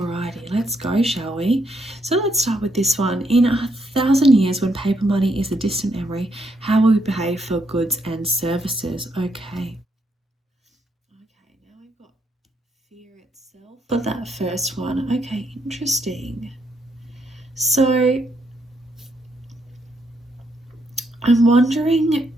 let's go, shall we? So let's start with this one. In 1,000 years, when paper money is a distant memory, how will we behave for goods and services? Okay. Now we've got fear itself for that first one. Okay, interesting. So I'm wondering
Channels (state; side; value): normal; both; correlation 0.76